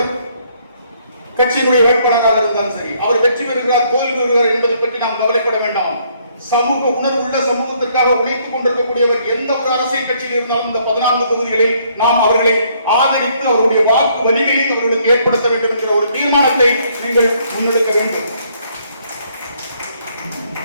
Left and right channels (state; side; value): inverted; both; correlation -0.67